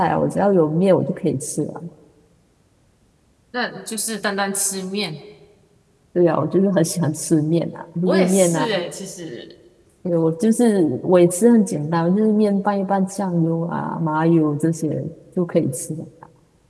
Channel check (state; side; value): identical; both; correlation 1.00